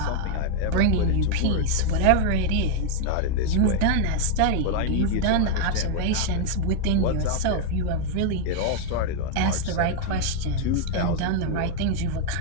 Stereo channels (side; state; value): both; different; correlation 0.00